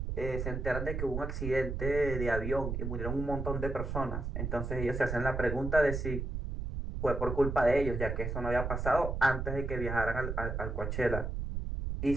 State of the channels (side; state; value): right; noise; rumble, 3 dB below the sound